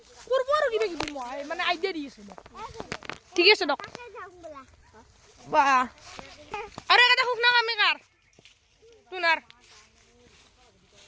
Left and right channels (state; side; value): identical; both; correlation 1.00